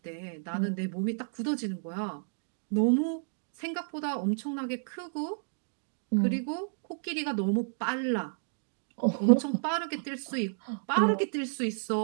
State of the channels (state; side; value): silent; left; digital silence